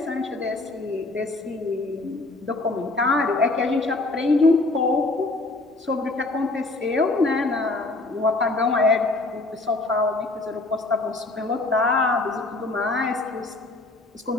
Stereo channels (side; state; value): right; quieter; 3.1 dB